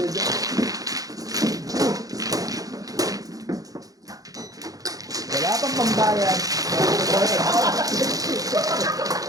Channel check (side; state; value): left; late; 0.17 ms